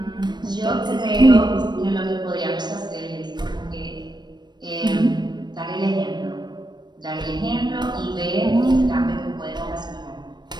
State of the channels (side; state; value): left; late; 0.21 ms